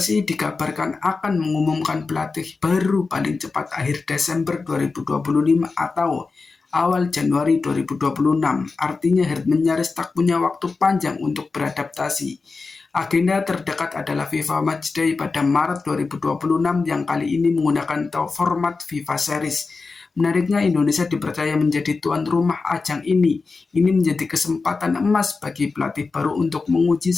dikabarkan akan mengumumkan pelatih baru paling cepat akhir Desember 2025 atau awal Januari 2026. Artinya Herdman nyaris tak punya waktu panjang untuk beradaptasi. Agenda terdekat adalah FIFA Matchday pada Maret 2026 yang kali ini menggunakan format FIFA Series. Menariknya, Indonesia dipercaya menjadi tuan rumah ajang ini. Ini menjadi kesempatan emas bagi pelatih baru untuk menguji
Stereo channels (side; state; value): right; quieter; 4.2 dB